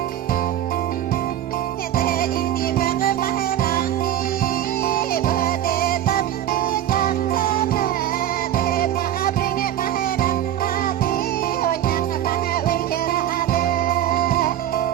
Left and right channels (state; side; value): quieter; left; 11.7 dB